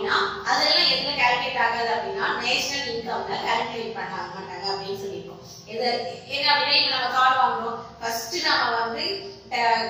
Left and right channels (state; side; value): identical; both; correlation 1.00